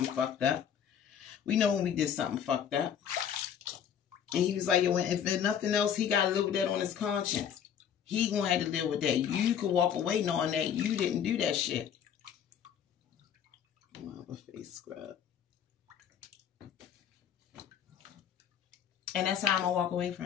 fucked up. We know when we did something fucked up. And he was like, yo, if there's nothing else, he got to live with that on his conscience. He going to have to live with that. You could walk away knowing that you didn't do that shit. I'm going to have a face scrub. And that's how I'm going to walk away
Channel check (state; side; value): quieter; right; 8.7 dB